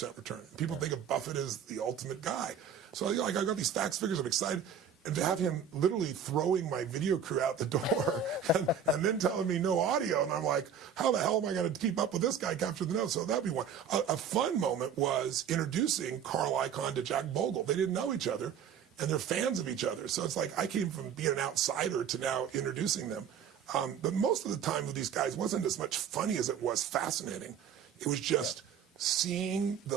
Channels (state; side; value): quieter; left; 7.5 dB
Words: return. People think of Buffett as the ultimate guy. So I got these facts, figures, I'm excited. And to have him literally throwing my video crew out the door and then telling me no audio, and I'm like, how the hell am I going to keep up with this guy capture the notes? So that'd be one. A fun moment was introducing Carl Icahn to Jack Bogle. They didn't know each other, and they're fans of each other. So it's like I came from being an outsider to now introducing them. But most of the time with these guys wasn't as much funny as it was fascinating. It was just seeing